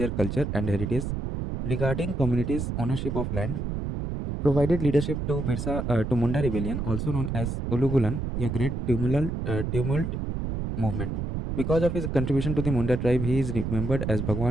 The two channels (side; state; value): right; noise; rumble, 3 dB below the sound